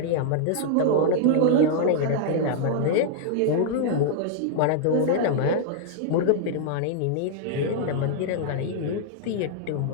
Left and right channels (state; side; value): different; both; correlation -0.01